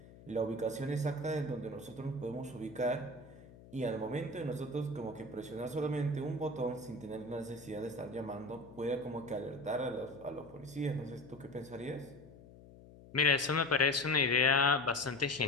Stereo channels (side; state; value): left; noise; hum, 20 dB below the sound